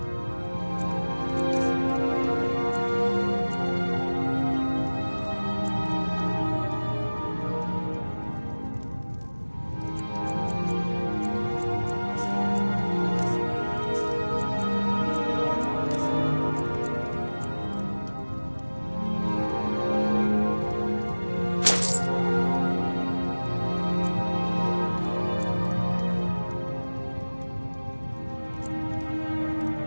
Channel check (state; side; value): inverted; both; correlation -1.00